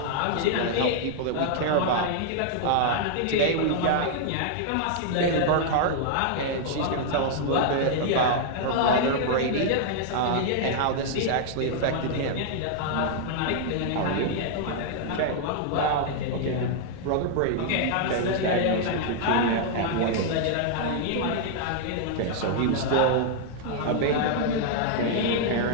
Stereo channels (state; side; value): different; both; correlation -0.01